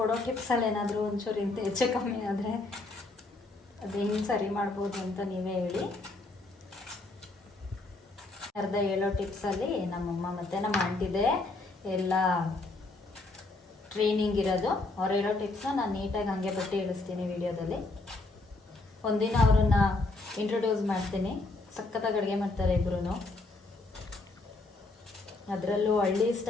ಟಿಪ್ಸಲ್ಲಿ ಏನಾದರೂ ಒಂಚೂರು ಇಂತ ಹೆಚ್ಚು ಕಮ್ಮಿ ಆದರೆ ಅದು ಹೆಂಗೆ ಸರಿ ಮಾಡ್ಬೋದು ಅಂತ ನೀವೇ ಹೇಳಿ. ಅರ್ಧ ಹೇಳೋ ಟಿಪ್ಸಲ್ಲಿ ನಮ್ಮಮ್ಮ ಮತ್ತು ನಮ್ಮ ಆಂಟಿದೆ ಎಲ್ಲ ಟ್ರೈನಿಂಗ್ ಇರೋದು. ಅವ್ರು ಹೇಳೋ ಟಿಪ್ಸ್ನ ನಾನು ನೀಟಾಗಿ ಹಾಗೆ ಬಟ್ಟೆ ಇಳಿಸ್ತೀನಿ ವಿಡಿಯೋದಲ್ಲಿ. ಒಂದಿನ ಅವ್ರನ್ನ ಇಂಟ್ರೊಡ್ಯೂಸ್ ಮಾಡ್ತೀನಿ. ಸಖತ್ತಾಗಿ ಅಡುಗೆ ಮಾಡ್ತಾರೆ ಇಬ್ಬರೂ. ಅದರಲ್ಲೂ ಹಳ್ಳಿ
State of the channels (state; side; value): quieter; right; 3.2 dB